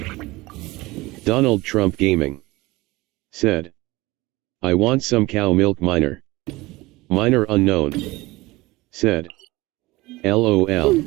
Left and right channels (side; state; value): left; quieter; 20.7 dB